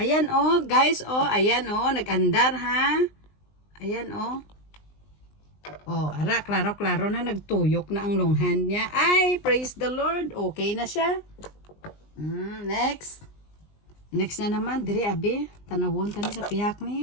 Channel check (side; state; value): right; late; 20 ms